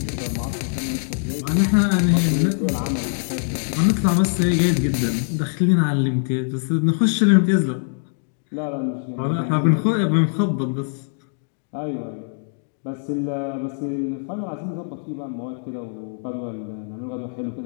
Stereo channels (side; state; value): right; silent; digital silence